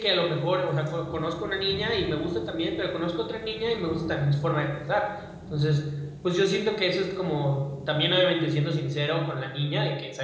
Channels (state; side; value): identical; both; correlation 1.00